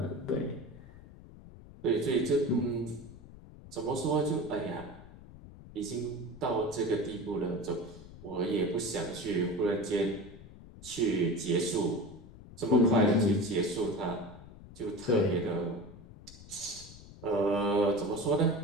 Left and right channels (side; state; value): left; noise; rumble, 18 dB below the sound